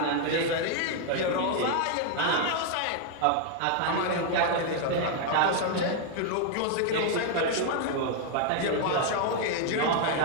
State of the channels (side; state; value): both; different; correlation 0.00